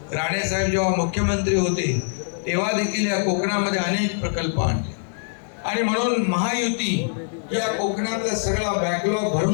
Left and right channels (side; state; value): right; silent; digital silence